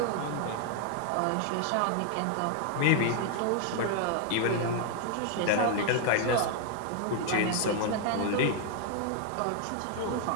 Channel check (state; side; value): different; both; correlation 0.00